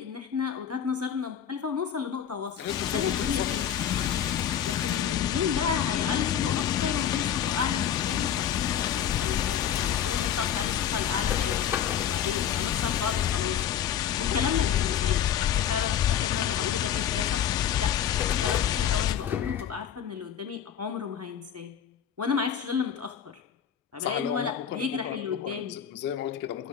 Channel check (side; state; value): right; quieter; 9.2 dB